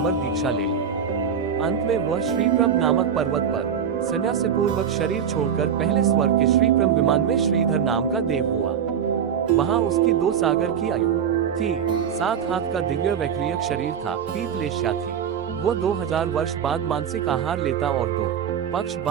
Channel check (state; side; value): quieter; left; 7.9 dB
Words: दीक्षा ले ली। अंत में वह श्रीप्रभ नामक पर्वत पर संन्यास पूर्वक शरीर छोड़कर पहले स्वर्ग के श्रीप्रभ विमान में श्रीधर नाम का देव हुआ। वहां उसकी 2 सागर की आयु थी, 7 हाथ का दिव्य वैक्रियक शरीर था, पीठ लेश्या थी। वो 2000 वर्ष बाद मानसिक आहार लेता और 2 पक्ष